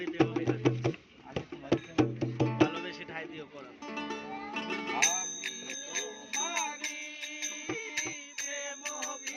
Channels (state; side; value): identical; both; correlation 1.00